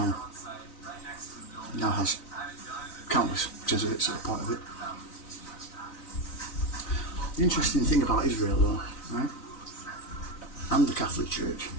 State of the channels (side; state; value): right; late; 3.9 ms